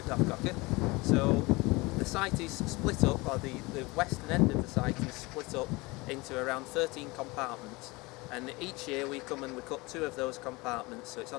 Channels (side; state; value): right; quieter; 23.9 dB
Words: Doffcocker. So the site is split up, or the western end of the site is split up into around 13 compartments, and each year we come and we cut 2 of those compartments, so it's